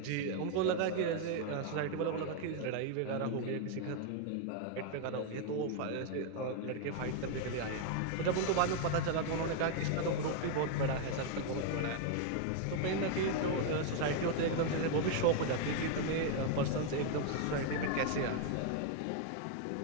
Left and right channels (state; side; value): different; both; correlation 0.00